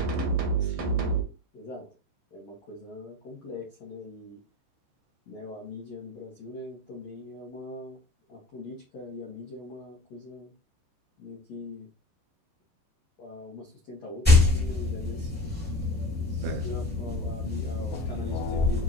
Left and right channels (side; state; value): both; normal; correlation 0.36